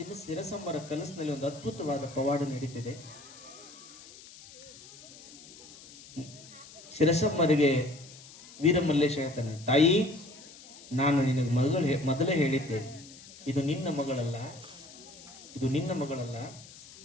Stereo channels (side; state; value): left; noise; hiss, 19 dB below the sound